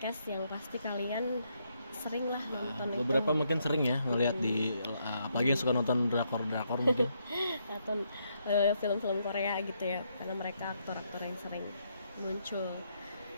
yang pasti kalian sering lah nonton. Beberapa mungkin sering ya ngelihat di apalagi yang suka nonton drakor mungkin atau film-film Korea gitu ya, karena mereka aktor-aktor yang sering muncul.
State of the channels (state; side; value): inverted; both; correlation -0.76